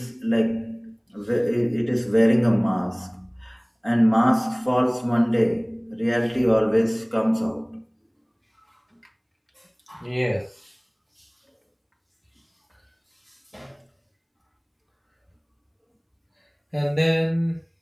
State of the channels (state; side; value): identical; both; correlation 1.00